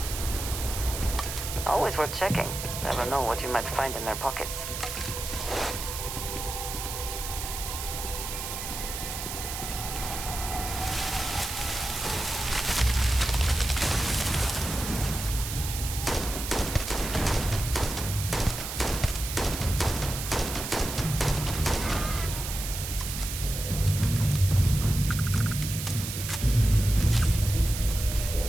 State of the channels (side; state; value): right; noise; hiss, 6 dB below the sound